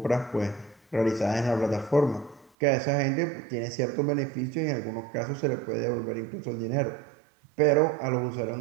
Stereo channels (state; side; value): drops out; left; at 2.5 s